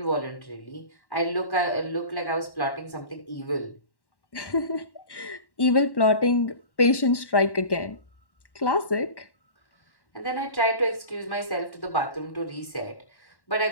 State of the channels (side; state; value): right; late; 1.1 ms